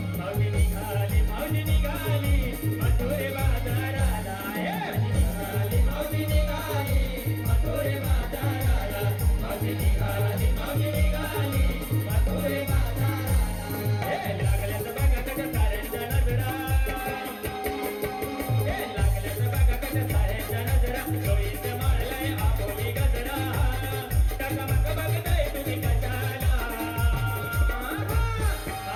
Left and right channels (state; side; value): identical; both; correlation 1.00